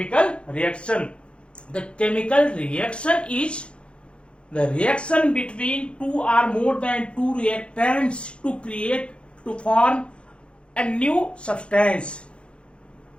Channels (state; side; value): late; right; 0.057 ms